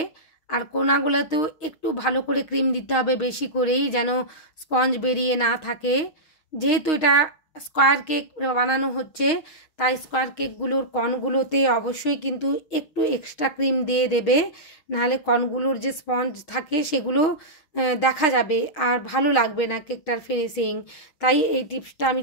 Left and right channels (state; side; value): late; right; 6.4 ms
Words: আর কোনাগুলোতেও একটু ভালো করে ক্রিম দিতে হবে, বেশি করেই, যেন স্পঞ্জ বেরিয়ে না থাকে। যেহেতু এটা স্কোয়ার কেক বানানো হচ্ছে, তাই স্কোয়ার কেকগুলোর কর্নগুলোতে অবশ্যই কিন্তু একটু এক্সট্রা ক্রিম দিয়ে দেবে, নাহলে কর্নগুলোর যে স্পঞ্জ থাকে সেগুলো দেখা যাবে আর ভালো লাগবে না কেকটার ফিনিশিং। তাই এই টিপসটা আমি